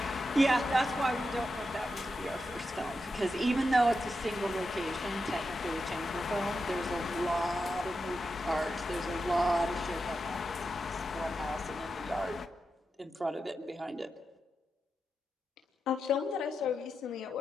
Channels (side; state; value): both; normal; correlation 0.88